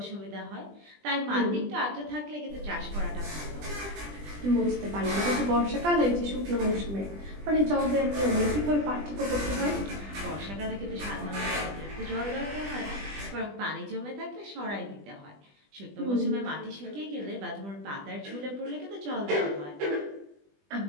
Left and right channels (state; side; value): late; left; 20 ms